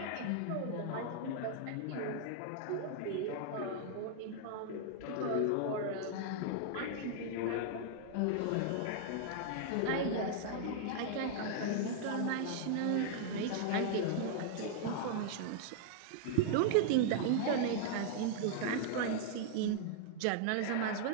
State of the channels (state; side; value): different; both; correlation -0.01